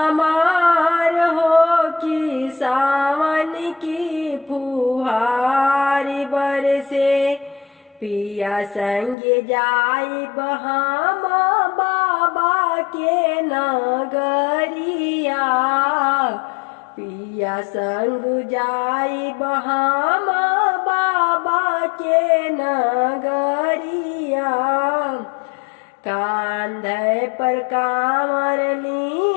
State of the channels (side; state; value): right; drops out; at 9.2 s